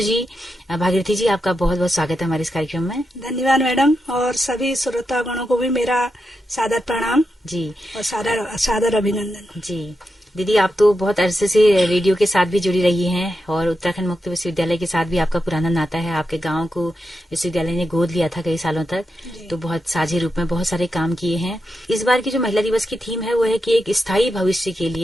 जी। भागीरथी जी, आपका बहुत बहुत स्वागत है हमारे इस कार्यक्रम में। धन्यवाद मैडम, और सभी श्रोतागणों को भी मेरा सादर प्रणाम जी और सादर अभिनंदन। जी दीदी, आप तो बहुत अरसे से रेडियो के साथ भी जुड़ी रही हैं और उत्तराखंड मुक्त विश्वविद्यालय के साथ भी आपका पुराना नाता है। आपके गांव को विश्वविद्यालय ने गोद लिया था कई सालों तक, तो बहुत साझे रूप में बहुत सारे काम किए हैं। इस बार की जो महिला दिवस की थीम है वो है कि एक स्थायी भविष्य के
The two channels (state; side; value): normal; both; correlation 0.87